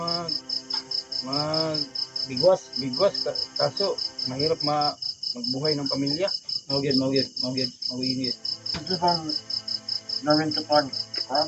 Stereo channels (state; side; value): identical; both; correlation 1.00